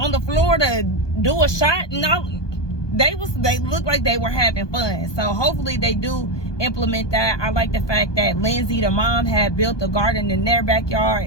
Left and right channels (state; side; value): late; right; 1.2 ms